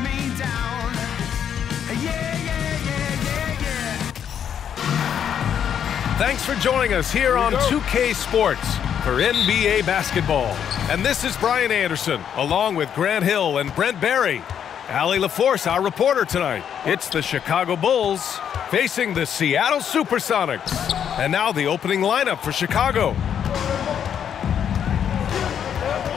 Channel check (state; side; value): quieter; right; 8.7 dB